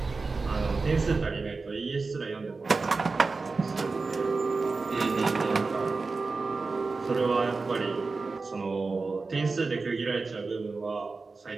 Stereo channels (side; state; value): left; quieter; 4.1 dB